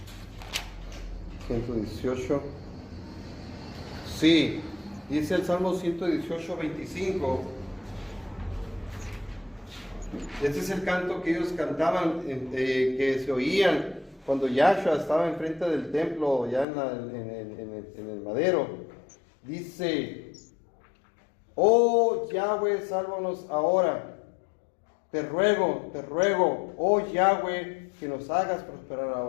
118. Sí, dice el Salmo 118, 25. Ese es el canto que ellos cantaban, que se oían cuando Yahshua estaba enfrente del templo, ya en el madero. Dice, oh Yahweh, sálvanos ahora. Te ruego, oh Yahweh, que nos hagas prosperar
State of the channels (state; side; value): drops out; right; at 16.7 s